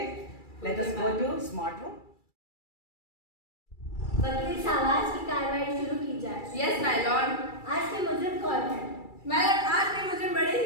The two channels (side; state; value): right; late; 2.3 ms